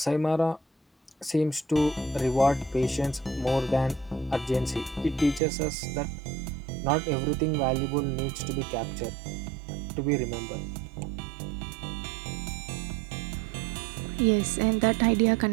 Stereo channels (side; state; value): left; drops out; at 5.4 s